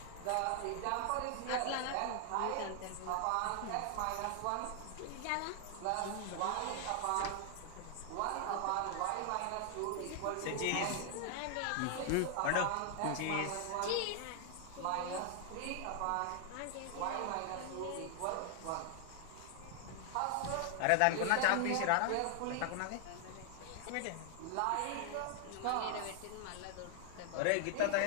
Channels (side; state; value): both; different; correlation 0.00